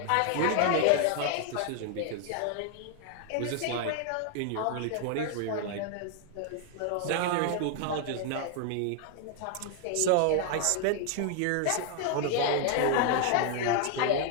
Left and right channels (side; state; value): both; different; correlation 0.00